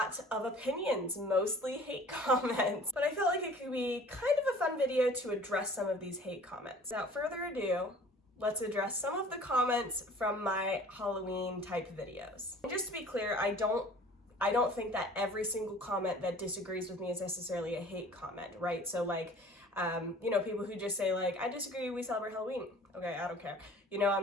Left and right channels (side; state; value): both; normal; correlation 0.48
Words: of opinions, mostly hate comments, but I felt like it could be kind of a fun video to address some of these hate comments. Without further ado, let's address some of the comments from my Halloween type videos. And just to be clear, I don't think that every single comment that disagrees with me is necessarily a hate comment, right? So people who just say I disagree, we celebrate Halloween. Okay, I don't care.